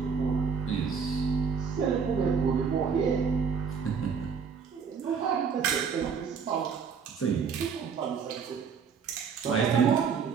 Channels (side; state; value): left; quieter; 6.2 dB